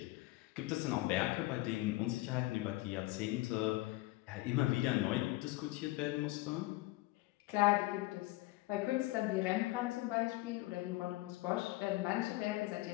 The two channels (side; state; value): right; quieter; 19.5 dB